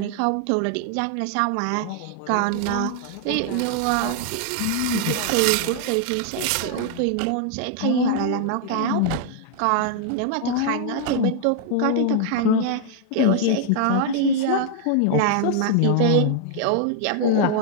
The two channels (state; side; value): different; both; correlation 0.00